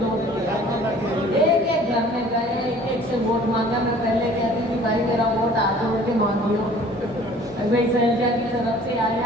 डोर किया। एक घर में गए, एक से वोट मांगा। मैं पहले कहती थी भाई मेरा वोट हाथ जोड़ के मांगियो, भाई शैलजा की तरफ से आए हैं,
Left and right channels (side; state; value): both; normal; correlation 0.51